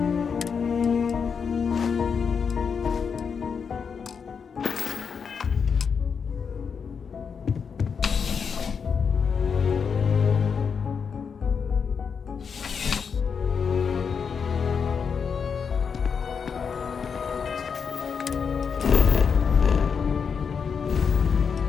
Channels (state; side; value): quieter; right; 6.2 dB